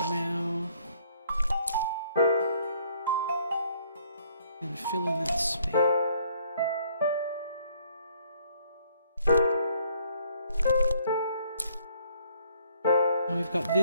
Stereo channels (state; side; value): inverted; both; correlation -0.64